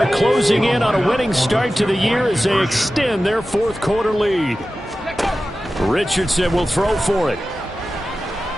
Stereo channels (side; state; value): both; normal; correlation 0.94